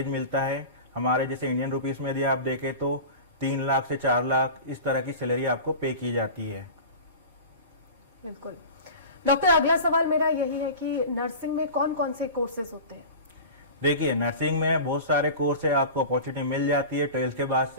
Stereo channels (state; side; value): inverted; both; correlation -0.33